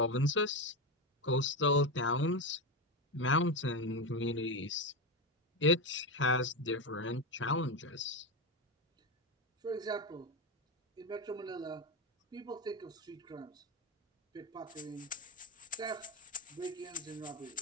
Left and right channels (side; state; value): both; normal; correlation 0.14